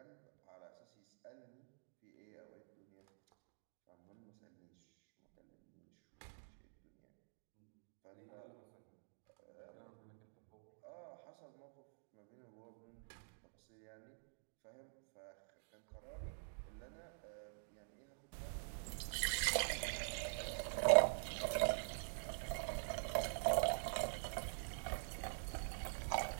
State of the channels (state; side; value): silent; left; digital silence